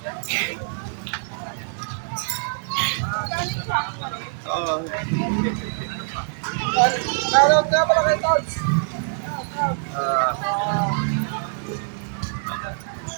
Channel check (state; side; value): silent; left; 60 dB below the other